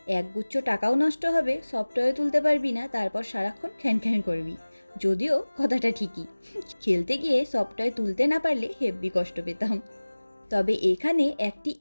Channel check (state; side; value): inverted; both; correlation -1.00